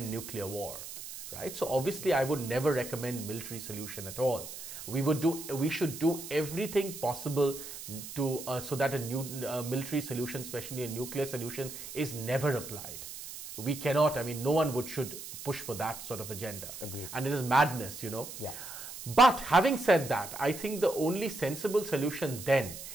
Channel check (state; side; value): noise; right; hiss, 11 dB below the sound